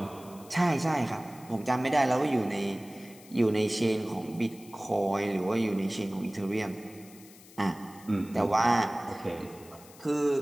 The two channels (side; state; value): left; noise; hiss, 22 dB below the sound